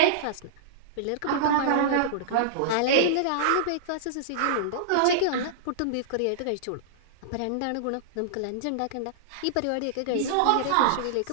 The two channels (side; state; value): both; different; correlation -0.02